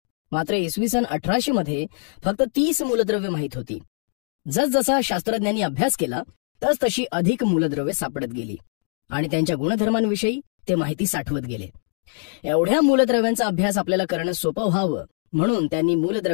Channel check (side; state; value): right; silent; digital silence